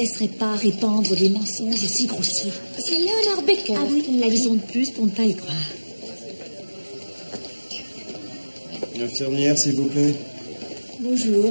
pas répandre des mensonges aussi grossiers. C'est Leonard Baker. Ah oui, une raison de plus pour ne pas y croire. Infirmière, s'il vous plaît.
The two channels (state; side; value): inverted; both; correlation -1.00